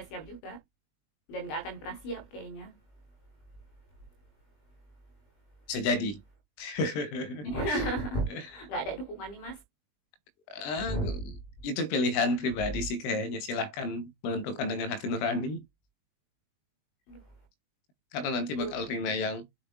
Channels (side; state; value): right; late; 20 ms